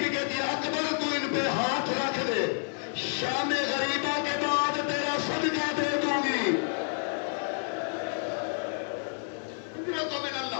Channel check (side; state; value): right; silent; 58 dB below the other